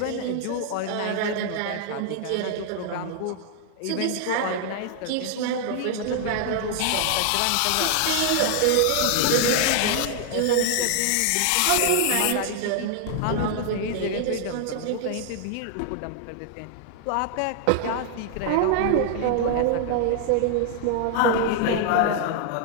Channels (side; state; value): both; different; correlation 0.00